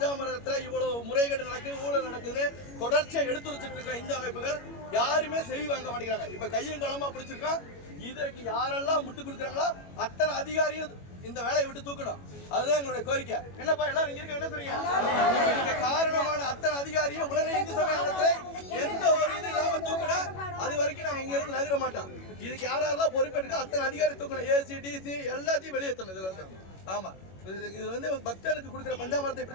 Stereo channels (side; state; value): right; late; 21 ms